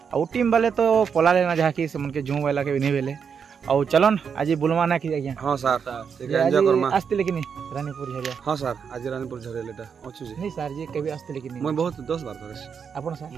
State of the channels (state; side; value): quieter; left; 6.7 dB